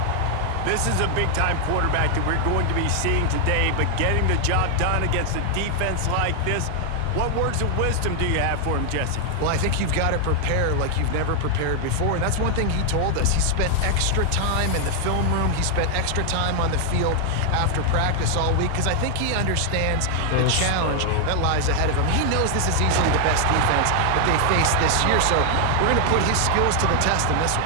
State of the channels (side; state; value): both; different; correlation 0.00